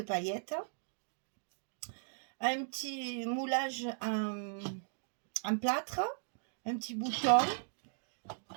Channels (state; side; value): silent; left; digital silence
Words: paillettes. Un petit moulage en plâtre. Un petit bouton.